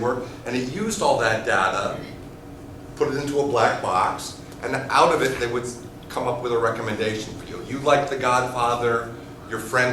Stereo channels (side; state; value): both; identical; correlation 1.00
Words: and it used all that data, put it into a black box, and out of it they would come up with a recommendation for you. You liked The Godfather, your